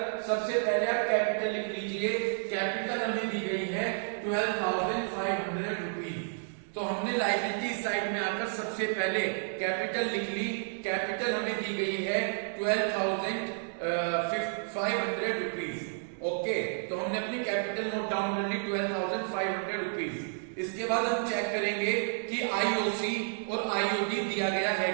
सबसे पहले आप कैपिटल लिख लीजिए। कैपिटल हमें दी गई है 12,500 रुपीज। तो हमने लायबिलिटी साइड में आकर सबसे पहले कैपिटल लिख ली। कैपिटल हमें दी गई है 12,500 रुपीज। ओके, तो हमने अपनी कैपिटल नोट डाउन कर ली 12,500 रुपीज। इसके बाद हम चेक करेंगे कि आईओसी और आईओडी दिया गया है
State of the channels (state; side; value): silent; left; digital silence